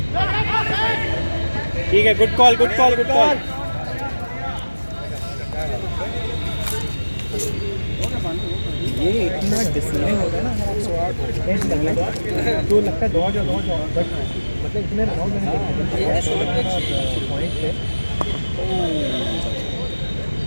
ठीक है, good call good call good call. ये इतना डिसिप्लिन होता है ना एज लगना तो लगता है दौड़ जाओ बट मतलब इतने राउंड में पॉइंट पे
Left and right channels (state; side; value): inverted; both; correlation -1.00